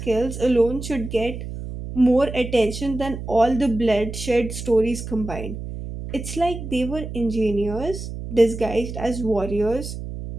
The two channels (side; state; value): right; noise; hum, 8 dB below the sound